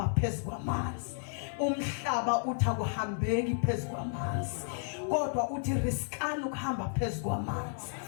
phezu kwamanzi. Umhlaba uthi akuhambeki phezu kwamanzi kodwa uthi riskani ukuhamba phezu kwamanzi.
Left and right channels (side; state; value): right; silent; digital silence